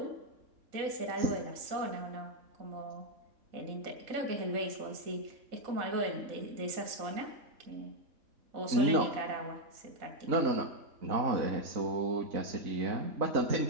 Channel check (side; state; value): left; late; 4.0 ms